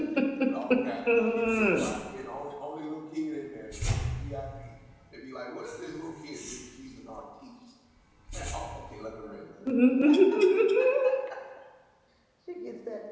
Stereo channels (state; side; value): identical; both; correlation 1.00